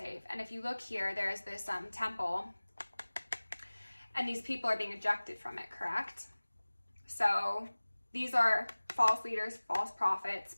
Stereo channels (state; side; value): inverted; both; correlation -1.00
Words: And if you look here, there's this temple, and these people are being ejected from it, correct? So these are false leaders, false prophets,